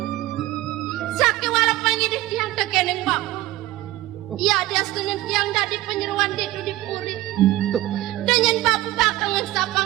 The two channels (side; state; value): left; quieter; 16.8 dB